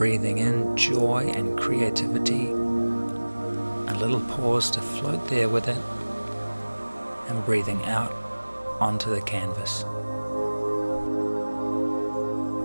in joy and creativity, a little pause to float there with it, and breathing out onto the canvas.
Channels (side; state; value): both; inverted; correlation -1.00